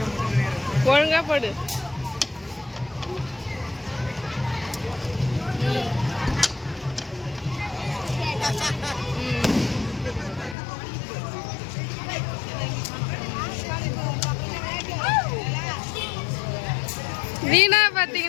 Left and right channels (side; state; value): right; drops out; at 10.6 s